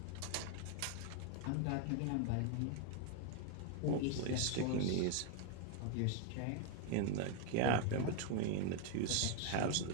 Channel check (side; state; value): both; different; correlation 0.01